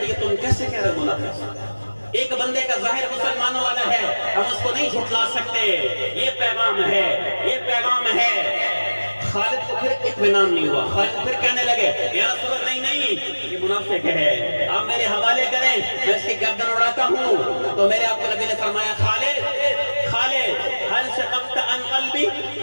ہے، تم کیسے کہہ رہے ہو منافق؟ ایک بندے کا ظاہر مسلمانوں والا ہے، ہم اس کو نہیں جھٹلا سکتے. یہ پیغام ہے، یہ پیغام ہے. خالد کو پھر اطمینان نہیں ہوا. خالد پھر کہنے لگے یا رسول اللہ نہیں، یہ منافق ہے، آپ میرے حوالے کریں، میں اس کی گردن اڑاتا ہوں. تو میرے آپ کو نبی نے فرمایا خالد حل شققت عن قلبی،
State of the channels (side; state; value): both; inverted; correlation -1.00